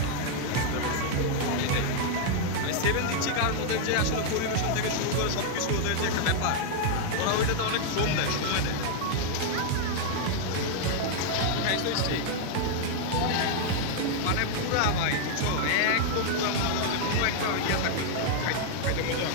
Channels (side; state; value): both; different; correlation 0.00